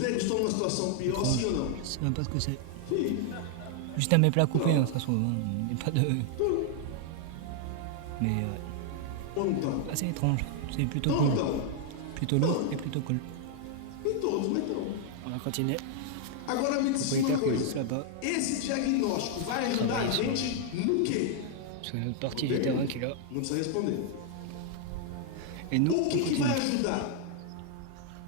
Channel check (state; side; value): different; both; correlation 0.00